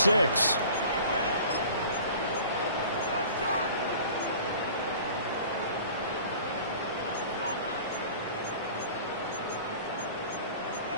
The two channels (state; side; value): inverted; both; correlation -0.45